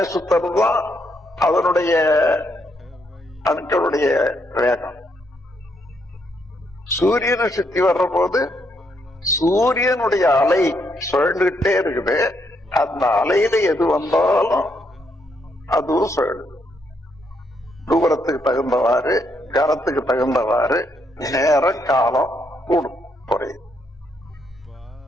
சுத்தறதுதான் அதனுடைய அணுக்களுடைய வேகம். சூரியனை சுத்தி வர்ற போது சூரியனுடைய அலை சுழண்டுகிட்டே இருக்குது. அந்த அலையில எது வந்தாலும் அதுவும் சுழலுது. தூரத்துக்கு தகுந்தவாறு, கரத்துக்கு தகுந்தவாறு நேரம் காலம் கூடும், குறையுது.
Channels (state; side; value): normal; both; correlation 0.75